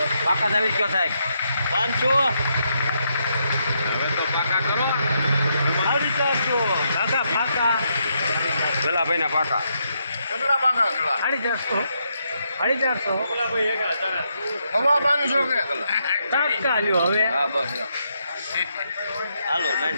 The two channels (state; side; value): inverted; both; correlation -0.79